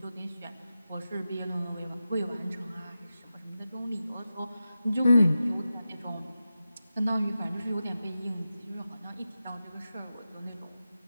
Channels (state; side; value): inverted; both; correlation -0.92